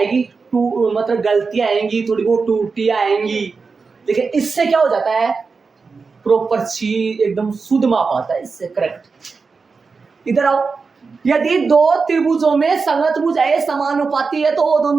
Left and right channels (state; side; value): quieter; left; 4.7 dB